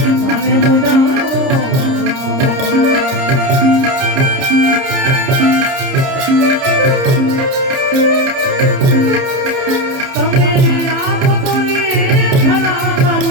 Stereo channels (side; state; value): left; late; 30 ms